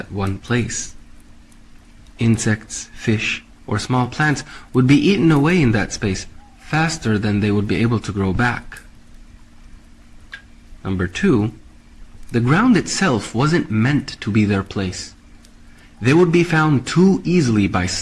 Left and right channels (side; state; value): both; identical; correlation 1.00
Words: one place. Insects, fish, or small plants would be eaten away in that space faster than they would be able to grow back. Number two, the ground itself wasn't meant to be their place. They would be found too easily by